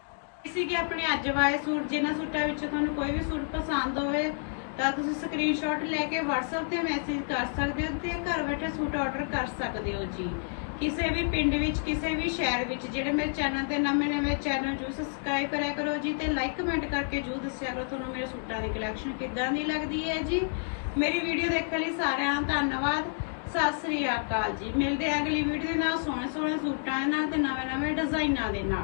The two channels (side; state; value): right; silent; digital silence